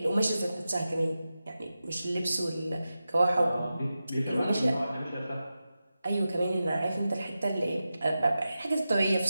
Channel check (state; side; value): inverted; both; correlation -0.92